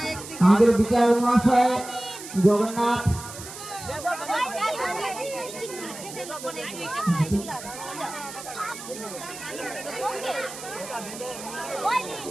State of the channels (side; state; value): right; noise; hiss, 12 dB below the sound